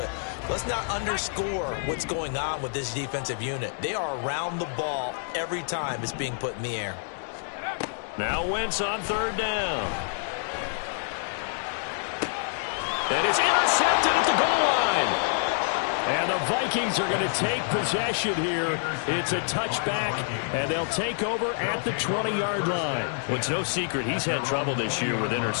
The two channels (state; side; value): silent; right; digital silence